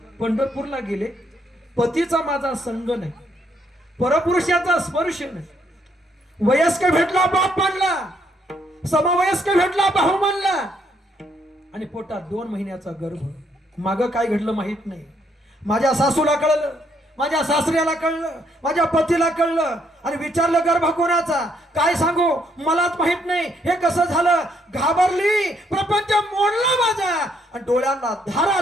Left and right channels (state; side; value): normal; both; correlation 0.71